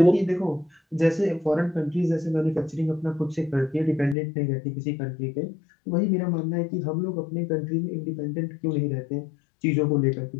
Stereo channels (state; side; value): drops out; right; at 4.2 s